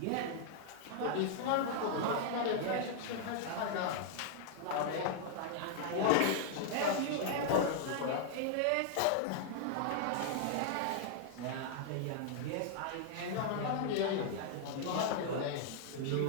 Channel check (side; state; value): both; different; correlation -0.01